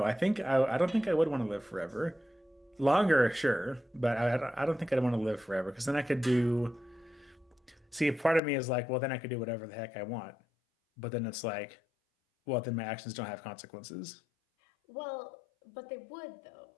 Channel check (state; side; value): drops out; right; at 8.4 s